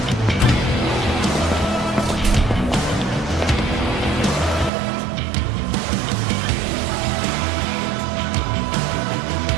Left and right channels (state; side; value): drops out; left; at 4.7 s